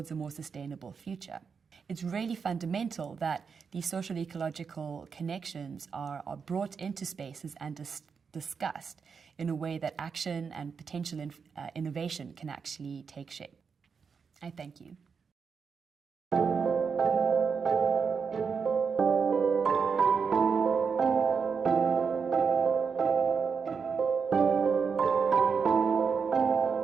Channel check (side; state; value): left; quieter; 5.8 dB